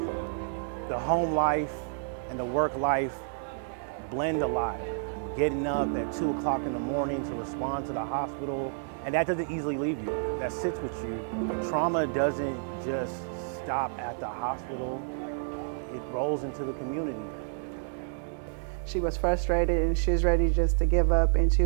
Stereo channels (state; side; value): silent; left; digital silence